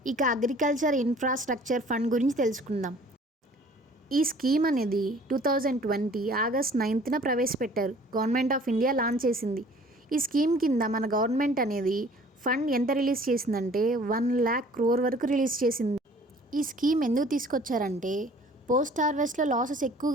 ఇక అగ్రికల్చర్ ఇన్ఫ్రాస్ట్రక్చర్ ఫండ్ గురించి తెలుసుకుందాం. ఈ స్కీమ్ అనేది 2020 August 9న ప్రవేశపెట్టారు. గవర్నమెంట్ ఆఫ్ ఇండియా లాంచ్ చేసింది. ఈ స్కీమ్ కింద మన గవర్నమెంట్ అనేది ఫండ్ ఎంత రిలీజ్ చేసిందంటే 1 lakh crore వరకు రిలీజ్ చేసింది. ఈ స్కీమ్ ఎందుకు తీసుకొచ్చారంటే పోస్ట్ హార్వెస్ట్లో లాసెస్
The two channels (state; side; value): normal; both; correlation 0.52